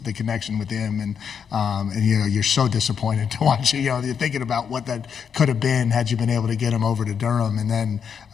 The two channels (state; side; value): quieter; right; 7.2 dB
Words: connection with him, and you're so disappointed to watch it. You're thinking about what that could have been had you been able to get him over to Durham, and then